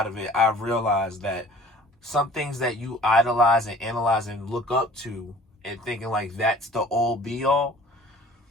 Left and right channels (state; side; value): normal; both; correlation 0.49